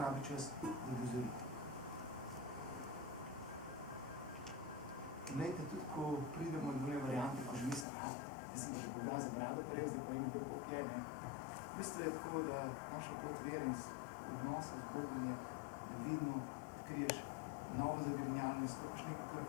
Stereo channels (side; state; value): right; drops out; at 7.9 s